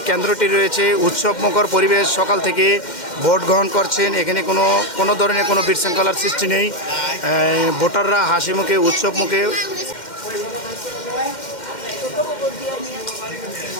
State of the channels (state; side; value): late; right; 2.1 ms